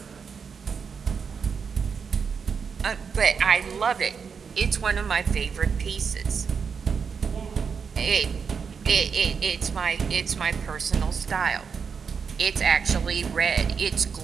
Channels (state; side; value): quieter; left; 6.1 dB